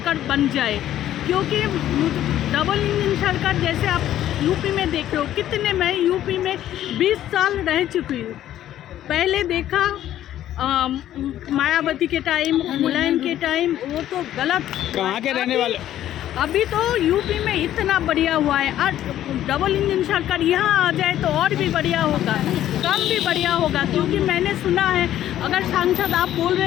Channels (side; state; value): right; quieter; 12.3 dB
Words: बन जाए, क्योंकि डबल इंजन सरकार जैसे आप यूपी में देख रहे हो, कितने, मैं यूपी में 20 साल रह चुकी हूँ। पहले देखा मायावती के टाइम, मुलायम के टाइम, वो तो गलत। कहाँ के रहने वाले? अभी तो यूपी में इतना बढ़िया हुआ है। आज डबल इंजन सरकार यहाँ आ जाए तो और भी बढ़िया होगा, कम भी बढ़िया होगा, क्योंकि मैंने सुना है, अगर सांसद आप बोल